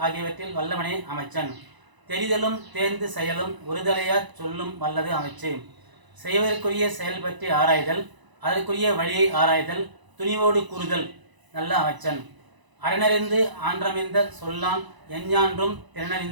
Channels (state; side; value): late; left; 1.0 ms